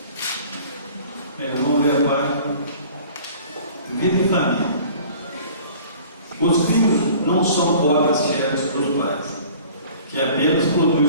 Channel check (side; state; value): both; inverted; correlation -0.48